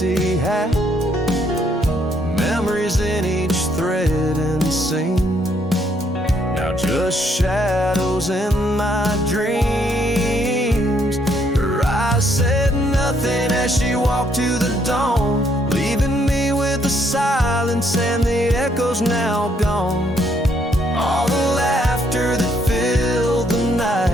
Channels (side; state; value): both; normal; correlation 0.70